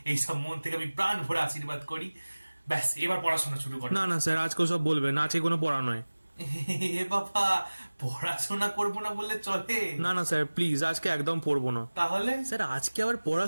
এইসব মন থেকে আমি প্রাণ ভরে আশীর্বাদ করি। ব্যাস, এবার পড়াশোনা শুরু করো। না না স্যার, আজকে সব বলবেন, আজকে কোনো পড়া নয়। এ বাবা, পড়াশোনা করবো না বললে চলে? না না স্যার, প্লিজ আজকে একদম পড়বো না। তাহলে? স্যার আজকে আবার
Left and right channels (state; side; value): inverted; both; correlation -1.00